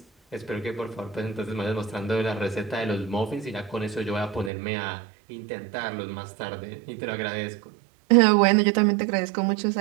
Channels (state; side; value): drops out; left; at 4.5 s